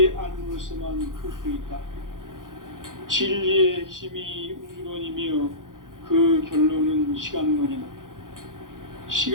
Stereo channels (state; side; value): late; left; 0.89 ms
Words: 알므로서만 풀 수 있다. 진리의 핵심이 우주론이며 그 결론은 시간론이다.